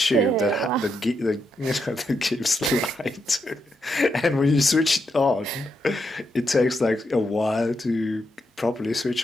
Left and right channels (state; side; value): normal; both; correlation 0.82